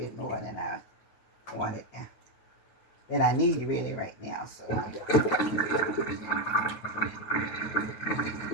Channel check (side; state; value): right; late; 9.3 ms